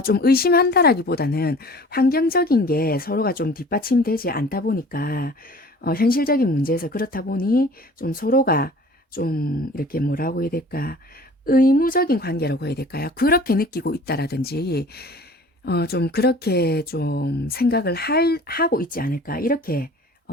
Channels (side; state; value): both; normal; correlation 0.46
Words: 좀 의심한다라기보다는 환경적인 게 서로가 좀 뒷받침되지 않다 보니까 현실적인 문제에서 그렇다 보니 좀 서로가 좀 이렇게 뭐라고 해야 될까 의무적인 관계라고 해야 될까요? 그렇게 느끼고 있다라든지 좀 그렇게 좀 생각을 하고 있지 않을까 이렇게